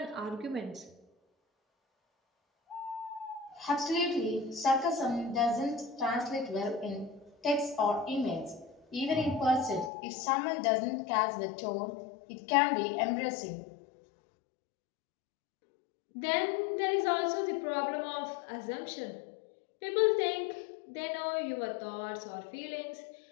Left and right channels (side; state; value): right; drops out; at 9.9 s